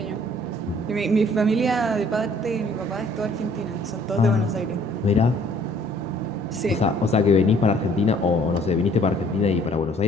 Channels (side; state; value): both; normal; correlation 0.59